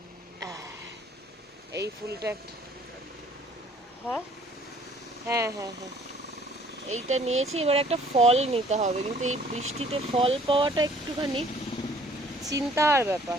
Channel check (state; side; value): normal; both; correlation 0.57